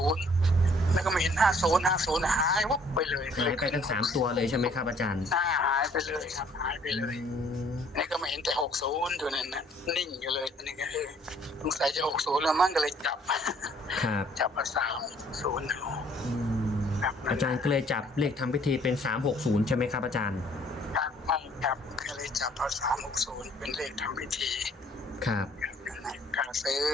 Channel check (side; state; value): both; normal; correlation 0.60